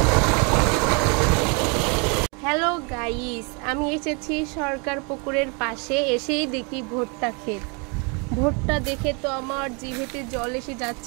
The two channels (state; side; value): quieter; left; 33.3 dB